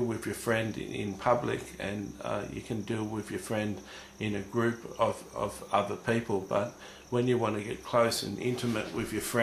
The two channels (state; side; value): identical; both; correlation 1.00